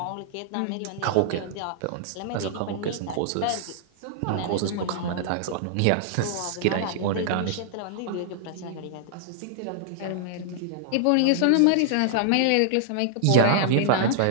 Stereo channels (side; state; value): both; different; correlation -0.01